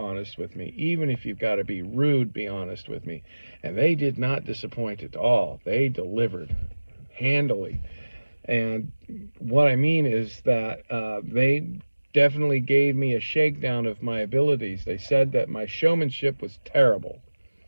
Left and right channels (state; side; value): inverted; both; correlation -1.00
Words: with me. Even if you've got to be rude, be honest with me. And they did not disappoint at all. They delivered handily. And what I mean is that they definitely gave me a shakedown of my abilities. They said that my showmanship was terrible.